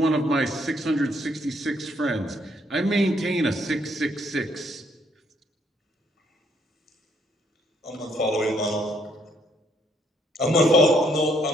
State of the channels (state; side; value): normal; both; correlation 0.69